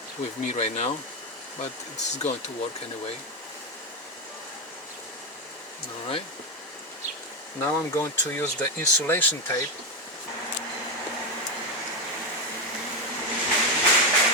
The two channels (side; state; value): both; normal; correlation 0.09